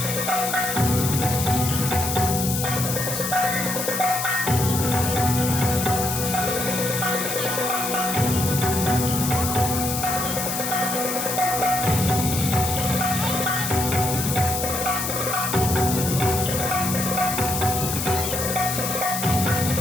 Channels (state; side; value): noise; left; hiss, 3 dB below the sound